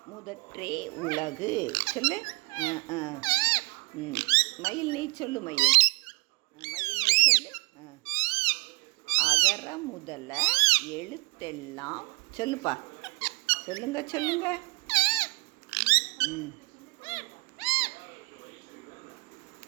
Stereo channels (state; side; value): quieter; left; 28.2 dB